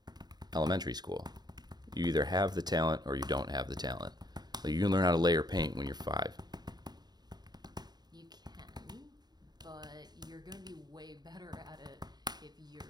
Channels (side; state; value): left; late; 0.20 ms